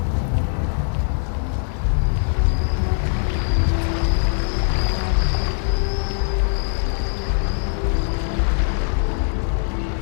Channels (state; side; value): silent; right; 59 dB below the other